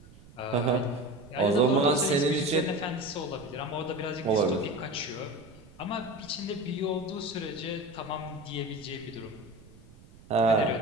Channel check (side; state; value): right; noise; rumble, 22 dB below the sound